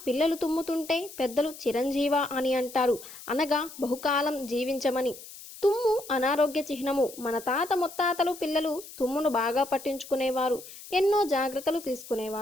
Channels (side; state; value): left; noise; hiss, 16 dB below the sound